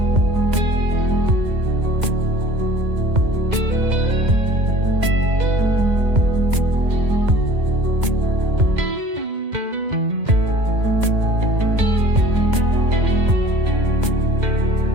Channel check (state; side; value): late; left; 2.1 ms